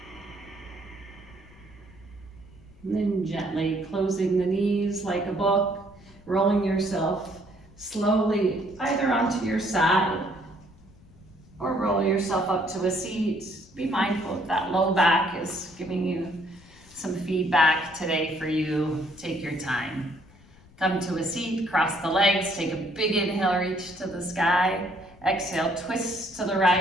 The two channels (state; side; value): noise; left; rumble, 25 dB below the sound